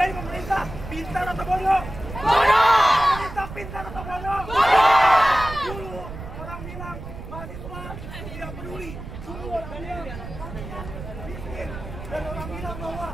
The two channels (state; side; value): noise; right; rumble, 11 dB below the sound